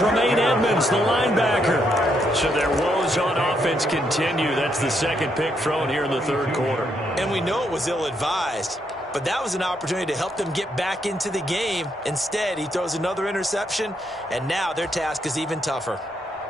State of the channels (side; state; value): both; normal; correlation 0.77